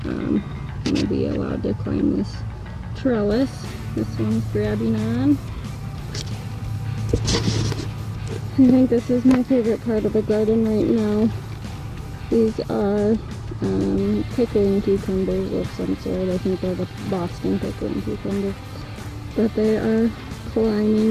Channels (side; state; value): both; identical; correlation 1.00